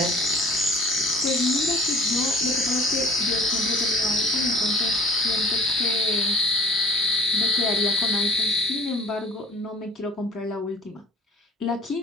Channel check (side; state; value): both; normal; correlation 0.47